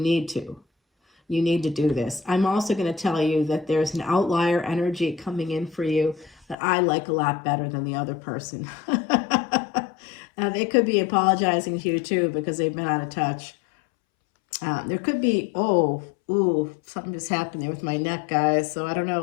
to. You need to do this. I'm also going to tell you that there's an outlier energy coming in for you that I like a lot better than the other person. They could be apologizing to you too because they've been out of touch. There could be, something just happened there with my neck, guys. So I don't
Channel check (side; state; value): right; drops out; at 6.6 s